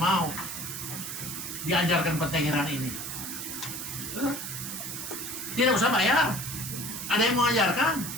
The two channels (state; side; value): noise; right; hiss, 6 dB below the sound